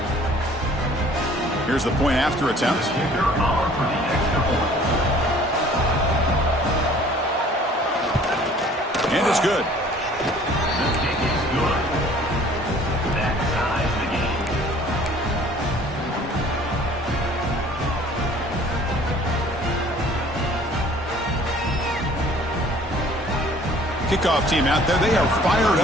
Here's the point after attempt. And it's good. Kickoff team out there, they are fired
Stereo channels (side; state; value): both; normal; correlation 0.52